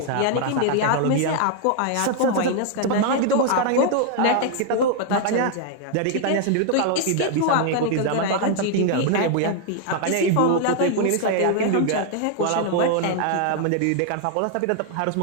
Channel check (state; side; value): different; both; correlation 0.00